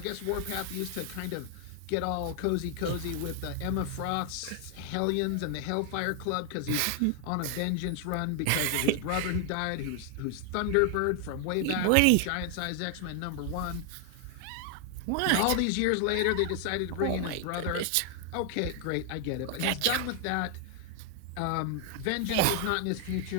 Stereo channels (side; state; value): both; different; correlation 0.00